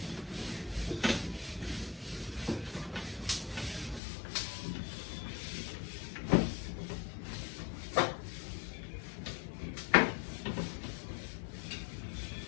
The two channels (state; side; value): drops out; right; at 4.0 s